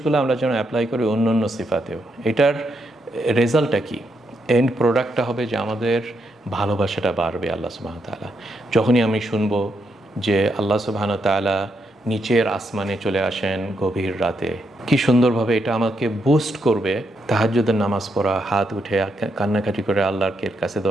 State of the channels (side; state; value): both; normal; correlation 0.80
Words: আমরা যেন অ্যাপ্লাই করি অন্য অন্য সিফাতেও। এটার রেজাল্টটা কি? এন্ড প্রোডাক্টটা হবে যে আমাদের ভালোবাসাটা বাড়বে আল্লাহ সুবহানাহু ওয়া তাআলা। যখনই আমি শুনবো যে আল্লাহ সুবহানাহু ওয়া তাআলা নিচের আসমানে চলে আসেন গভীর রাতে, কি সুন্দরভাবে এটা আমাকে বুস্ট করবে। তাহাজ্জুদের নামাজ পড়া, হাত উঠে কান্নাকাটি করে আল্লাহর কাছে